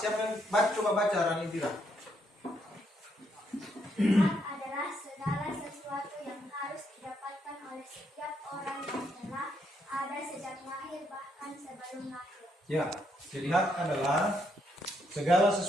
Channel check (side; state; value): both; normal; correlation 0.75